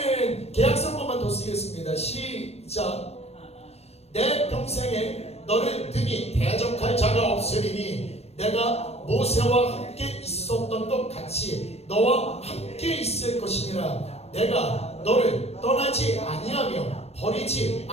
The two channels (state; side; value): late; right; 0.30 ms